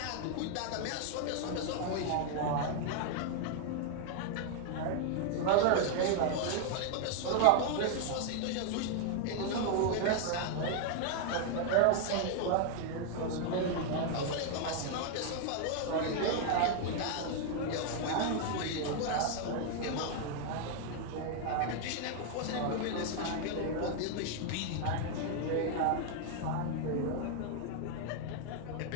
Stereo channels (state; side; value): different; both; correlation 0.00